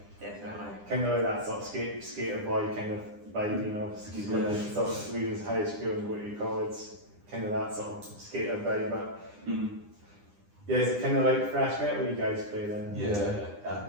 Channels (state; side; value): late; left; 9.9 ms